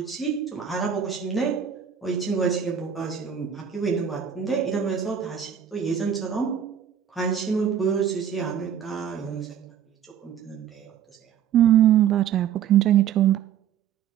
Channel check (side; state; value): left; quieter; 8.7 dB